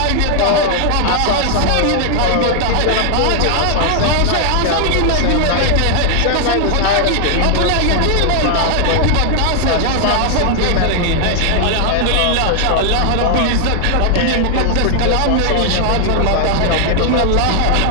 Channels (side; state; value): both; different; correlation 0.00